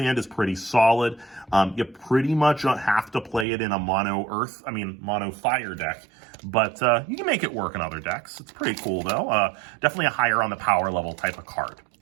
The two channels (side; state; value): left; drops out; at 3.5 s